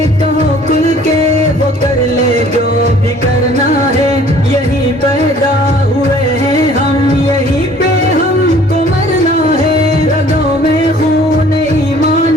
کہو کل کے وہ کر لے جو بھی کرنا ہے. یہی پیدا ہوئے ہیں ہم یہی پہ ہم کو مرنا ہے. رگوں میں خون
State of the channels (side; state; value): both; normal; correlation 0.54